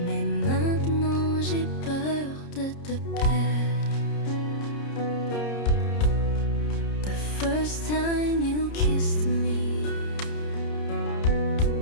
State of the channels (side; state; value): right; late; 30 ms